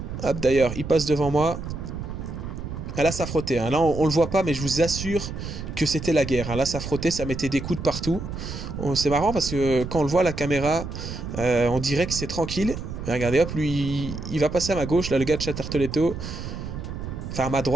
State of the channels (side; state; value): right; noise; rumble, 7 dB below the sound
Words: Hop, d'ailleurs, il passe devant moi. Ah, là, ça frottait. Hein. Là, on le voit pas, mais je vous assure que c'était la guerre. Hein. Là, ça frottait, ça mettait des coups de partout. C'est marrant parce que quand on le voit à la caméra, on dirait que c'est tranquille. Mais regardez, hop, lui, il va passer à ma gauche. Là, le gars de Tartoletto. Enfin, à ma